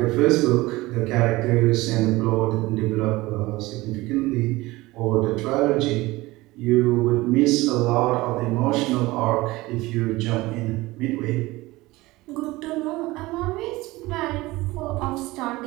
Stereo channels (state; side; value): quieter; left; 20.0 dB